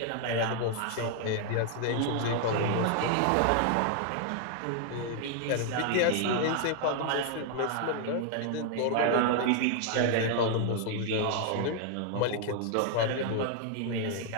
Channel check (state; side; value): different; both; correlation 0.00